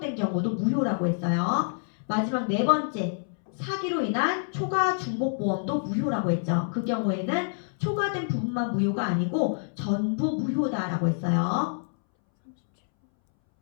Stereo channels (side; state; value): right; silent; 60 dB below the other